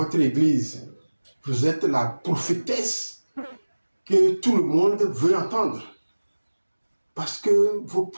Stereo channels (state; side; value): inverted; both; correlation -1.00